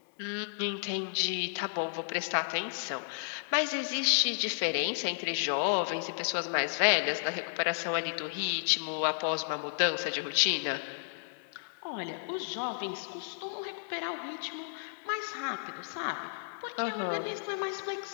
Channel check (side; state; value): right; silent; digital silence